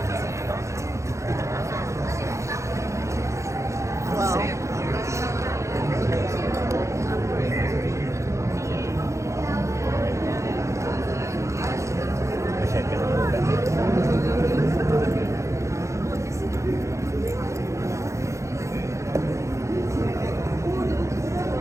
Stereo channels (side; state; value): left; late; 0.14 ms